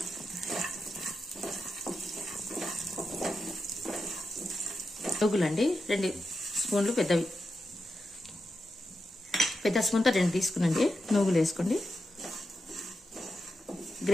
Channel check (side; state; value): both; normal; correlation 0.88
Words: నువ్వులండి 2 స్పూన్లు పెద్దవి. పెద్ద స్పూన్తో 2 తీసుకునండి. నువ్వులు వేసుకోండి.